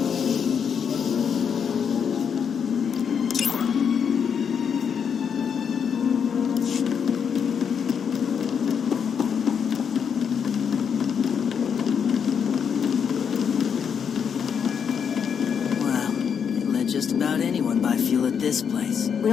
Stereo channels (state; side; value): quieter; right; 7.2 dB